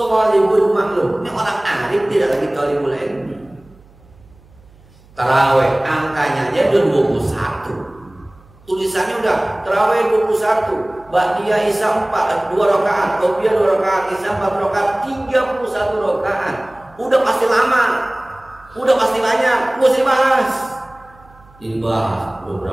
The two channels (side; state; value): right; noise; hum, 27 dB below the sound